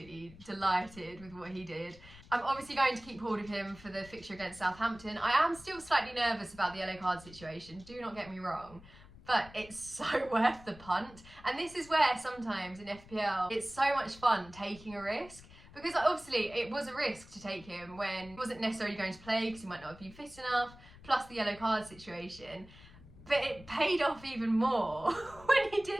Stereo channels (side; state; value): left; noise; rumble, 20 dB below the sound